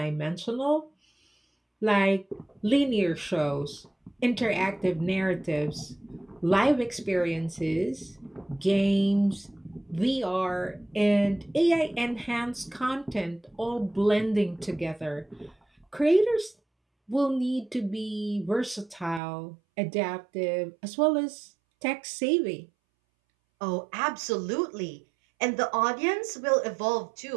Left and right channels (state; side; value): drops out; left; at 19.2 s